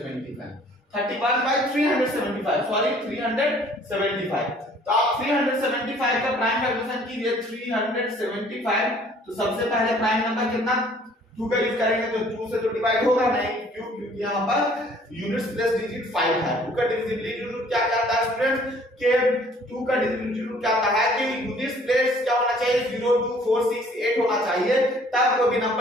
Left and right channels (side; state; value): both; normal; correlation 0.56